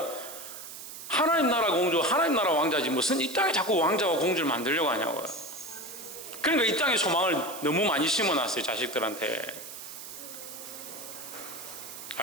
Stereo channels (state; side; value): noise; right; hiss, 11 dB below the sound